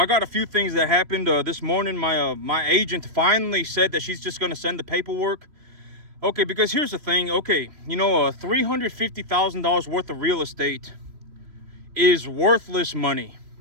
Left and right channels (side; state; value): left; late; 3.1 ms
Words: got a few things that happened this morning. My agent finally said that she's just gonna send the paperwork. Okay, because here's the thing. Okay, you know, $350,000 worth of real estate is worthless money.